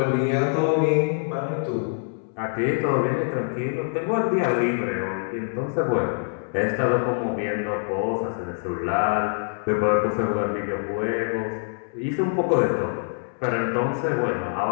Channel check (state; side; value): silent; right; 62 dB below the other